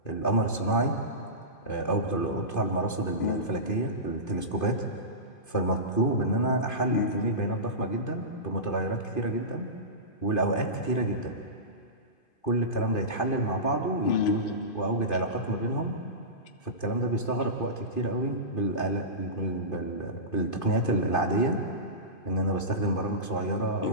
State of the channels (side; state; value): right; late; 2.5 ms